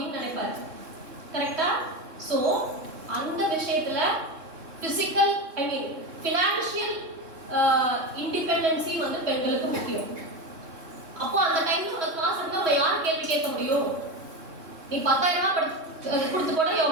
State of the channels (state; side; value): late; left; 3.6 ms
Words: நினைப்பாரு. கரெக்டா? ஸோ அந்த விஷயத்துல பிசிக்கல், ஐ மீன் ஃபினான்ஷியல் இண்டிபெண்டன்சி வந்து பெண்களுக்கு முக்கியம். அப்போ அந்த டைம்ல உனக்கு காசு இருந்தா நம்ம யார் கேள்வி கேட்க முடியும்? நீ 10,000 ரூபாய் கொடுத்து கூட